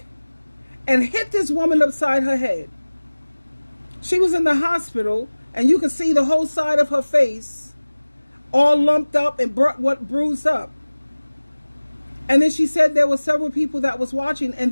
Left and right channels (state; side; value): inverted; both; correlation -1.00